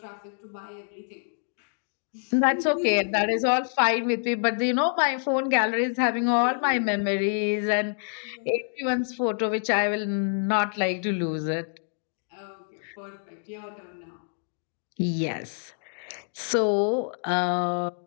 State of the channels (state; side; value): silent; right; digital silence